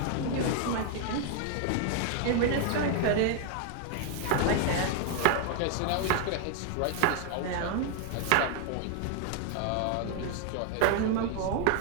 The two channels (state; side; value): different; both; correlation 0.00